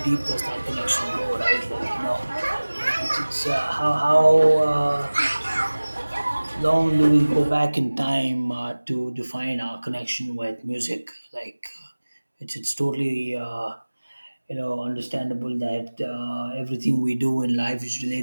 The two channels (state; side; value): inverted; both; correlation -1.00